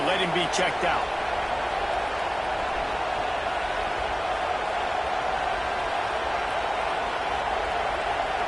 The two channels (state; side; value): identical; both; correlation 1.00